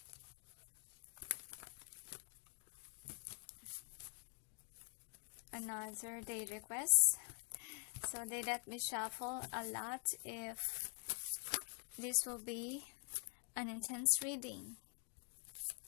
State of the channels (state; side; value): quieter; right; 36.3 dB